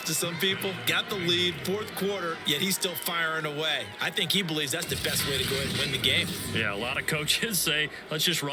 to some people. Got the lead, 4th quarter, yet he's still firing away. I think he believes that's the best way to go ahead and win the game. Yeah, a lot of coaches say, let's just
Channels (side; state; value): both; identical; correlation 1.00